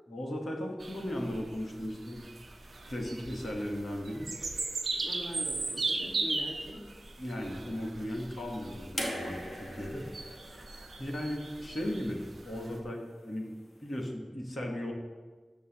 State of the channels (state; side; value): normal; both; correlation 0.93